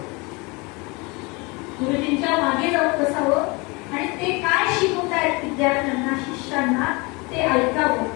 गुरुजींच्या मागे जाऊन बसावं आणि ते काय शिकवतायत विद्यार्थ्यांना शिष्यांना ते ऐकावं,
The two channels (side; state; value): right; quieter; 27.1 dB